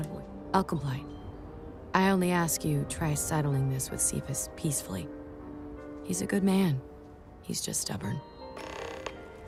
of ways. I'll comply. I only ask you try settling this with Cephas peacefully. He's a good man. He's just stubborn.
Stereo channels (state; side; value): identical; both; correlation 1.00